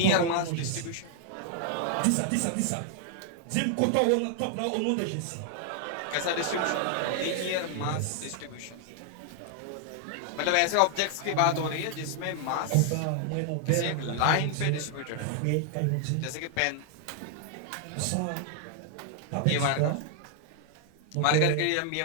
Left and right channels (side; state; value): both; different; correlation 0.00